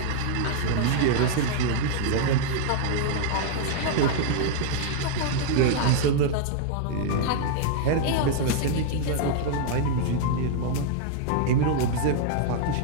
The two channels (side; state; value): both; different; correlation -0.01